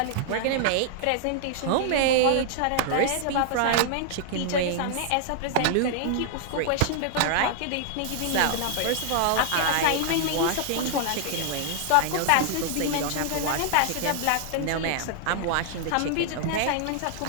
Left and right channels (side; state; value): both; different; correlation 0.00